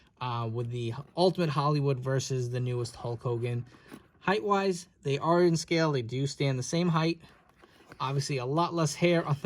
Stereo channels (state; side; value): identical; both; correlation 1.00